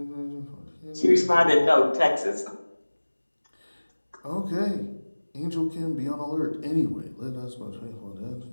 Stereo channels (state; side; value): inverted; both; correlation -1.00